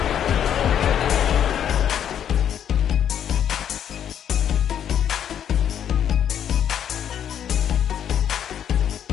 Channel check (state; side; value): quieter; right; 9.4 dB